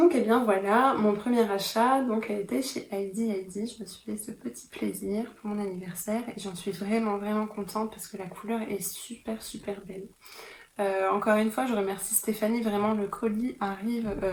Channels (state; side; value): identical; both; correlation 1.00